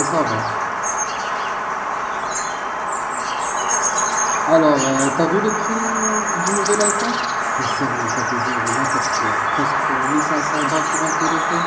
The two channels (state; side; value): identical; both; correlation 1.00